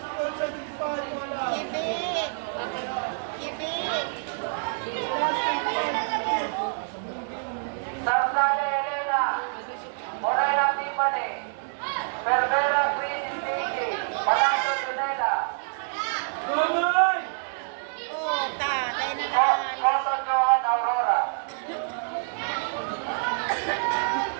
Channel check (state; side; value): silent; left; digital silence